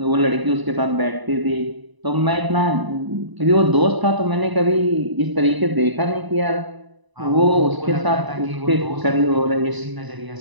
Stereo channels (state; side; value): late; left; 1.0 ms